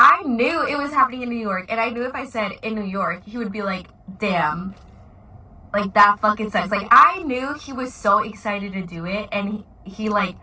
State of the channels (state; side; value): identical; both; correlation 1.00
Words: knew it was happening in New York, and I knew if I said in New York, he would be like, damn, like, that fucking sucks. Like, I knew he was so excited to do it, and he like,